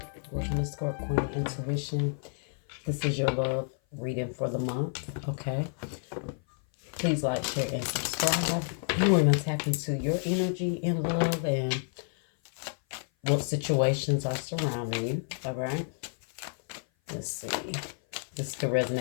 Welcome to Scorp Queen Intuition. This is your love reading for the month. Okay. Please like, share, and subscribe. You want to tap into your energy and love and what situations are surrounding you. All right. Let's see. This could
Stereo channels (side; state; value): right; silent; 56 dB below the other